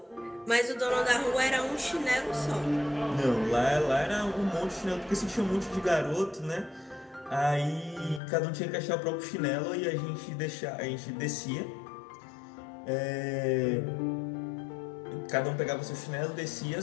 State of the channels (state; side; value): drops out; right; at 8.2 s